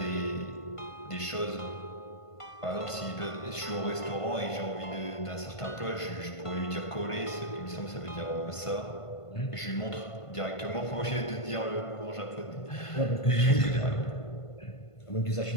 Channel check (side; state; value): right; late; 1.5 ms